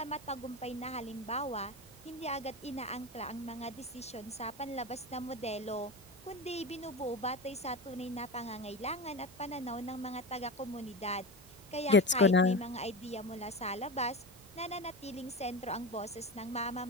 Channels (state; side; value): normal; both; correlation 0.25